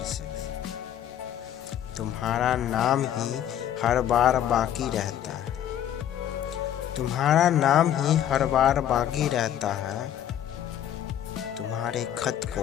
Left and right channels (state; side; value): quieter; right; 10.6 dB